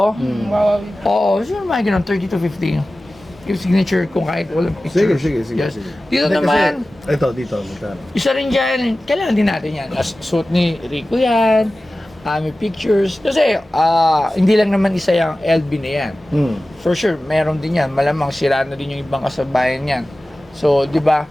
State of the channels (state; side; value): normal; both; correlation 0.96